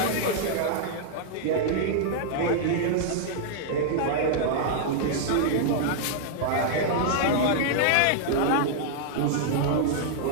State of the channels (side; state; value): both; different; correlation -0.01